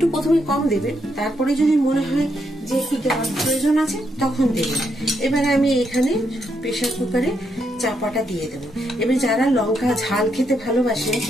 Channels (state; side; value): normal; both; correlation 0.78